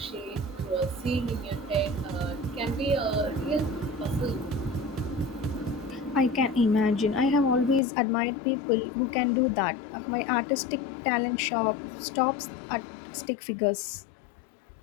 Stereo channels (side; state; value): right; drops out; at 7.8 s